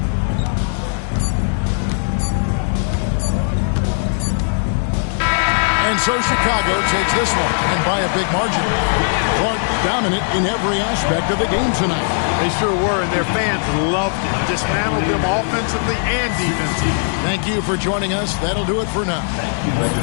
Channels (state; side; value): silent; right; 67 dB below the other